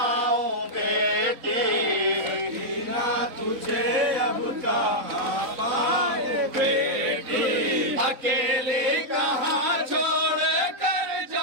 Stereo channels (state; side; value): late; left; 4.0 ms